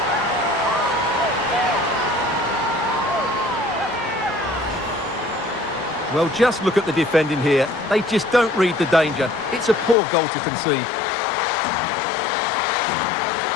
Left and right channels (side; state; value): right; drops out; at 10.0 s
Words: Well, just look at the defending here. They just don't read the danger. It's a poor goal to concede.